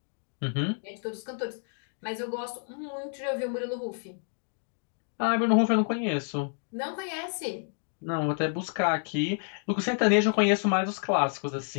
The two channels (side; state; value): right; silent; 58 dB below the other